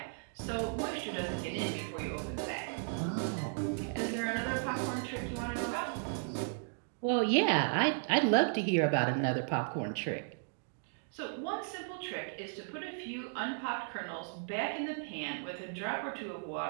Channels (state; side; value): silent; left; digital silence